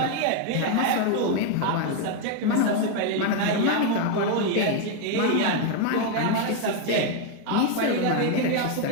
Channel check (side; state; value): both; different; correlation 0.01